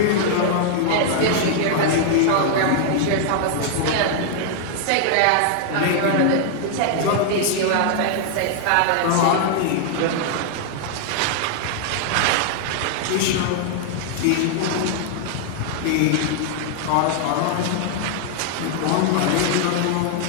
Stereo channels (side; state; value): both; different; correlation 0.00